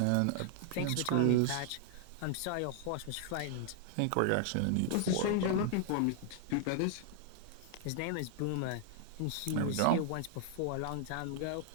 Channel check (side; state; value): both; different; correlation 0.00